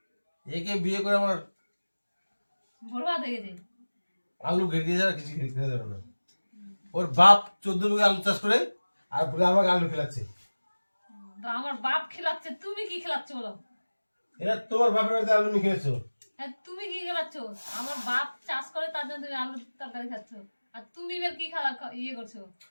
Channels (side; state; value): both; inverted; correlation -1.00